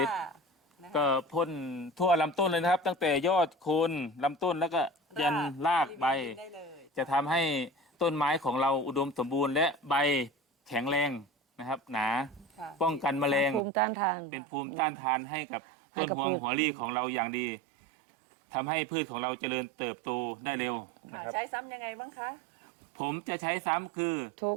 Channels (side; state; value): left; drops out; at 13.7 s